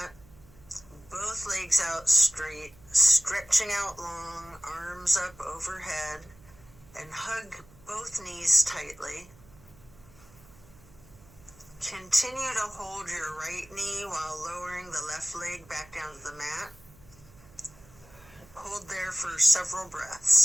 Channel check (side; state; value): right; noise; hum, 24 dB below the sound